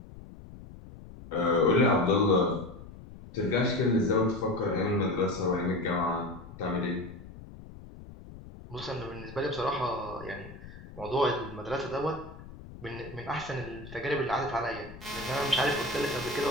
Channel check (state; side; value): noise; left; rumble, 16 dB below the sound